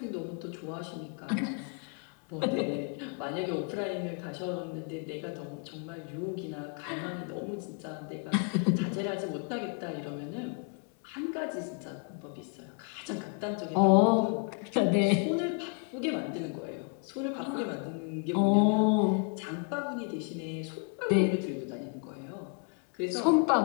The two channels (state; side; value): quieter; right; 34.7 dB